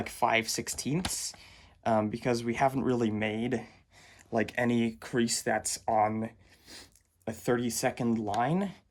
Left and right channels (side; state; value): both; identical; correlation 1.00